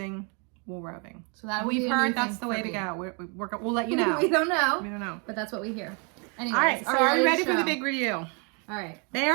wool roving. So that we've heard that's the way to go. We'll let you know. We don't know. We don't know. But that's what we hear. Anyways, all right, so are you ready for the big review? All right. They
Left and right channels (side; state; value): left; quieter; 35.3 dB